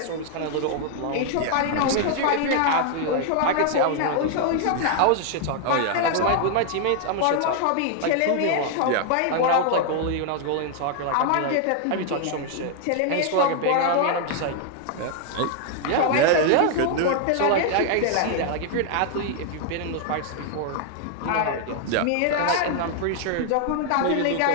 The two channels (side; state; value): both; different; correlation 0.00